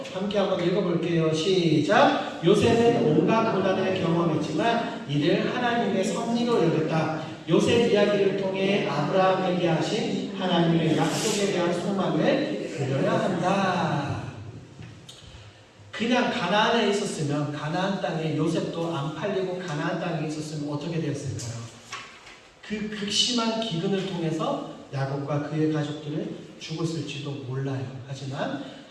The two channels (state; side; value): identical; both; correlation 1.00